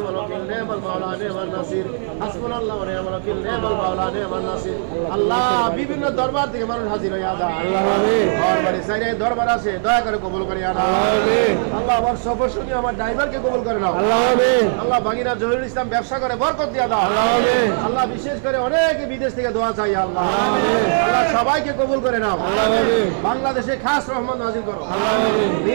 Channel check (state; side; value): silent; left; 56 dB below the other